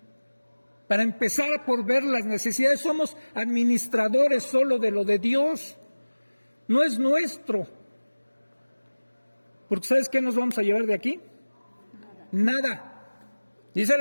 Para empezar por ver las necesidades, somos administradores solo de lo de Dios, no es nuestro. Porque ¿sabes qué nos vamos a llevar de aquí? Nada. Dice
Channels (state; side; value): inverted; both; correlation -1.00